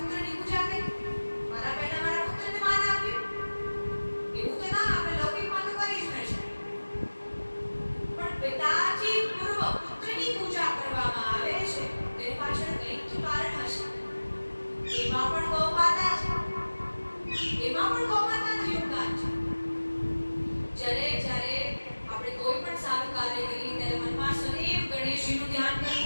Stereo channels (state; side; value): inverted; both; correlation -1.00